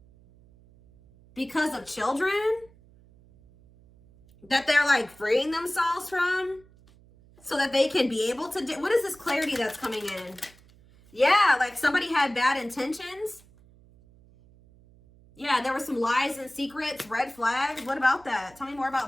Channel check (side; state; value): right; noise; hum, 27 dB below the sound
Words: because of children that they're like freeing themselves from, so that they can be able to do. What is this clarity that's coming in? Yeah, like somebody had bad intentions. Yeah, there were some lies and secrets, red flags. What about that? Tell me more